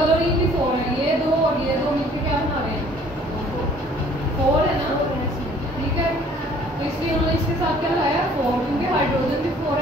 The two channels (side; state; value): both; normal; correlation 0.56